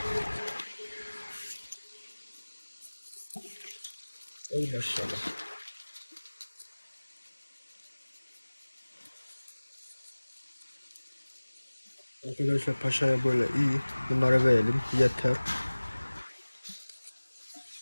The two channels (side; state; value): both; inverted; correlation -1.00